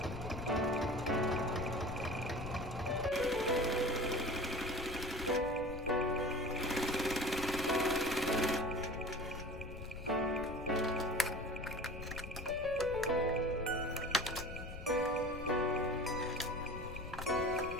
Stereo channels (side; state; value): left; noise; rumble, 10 dB below the sound